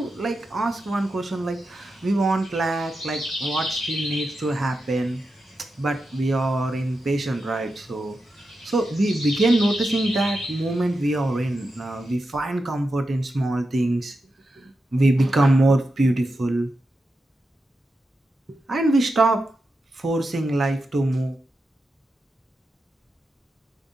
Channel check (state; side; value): normal; both; correlation 0.89